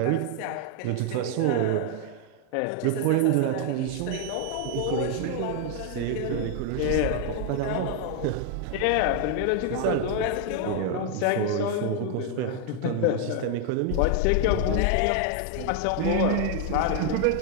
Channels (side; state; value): both; different; correlation 0.00